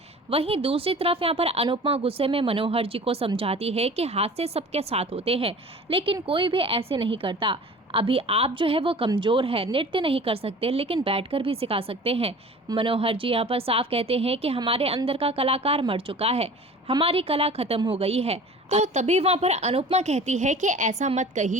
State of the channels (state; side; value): normal; both; correlation 0.42